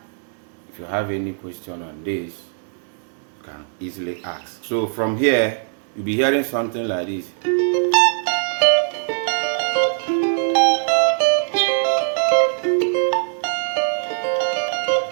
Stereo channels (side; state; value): left; silent; 65 dB below the other